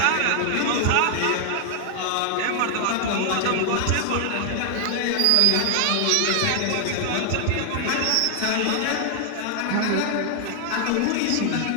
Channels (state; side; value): different; both; correlation 0.00